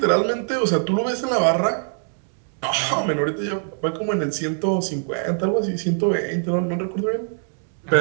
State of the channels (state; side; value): silent; left; 64 dB below the other